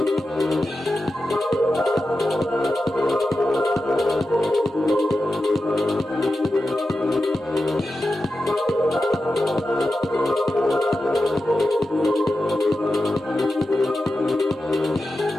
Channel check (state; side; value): normal; both; correlation 0.91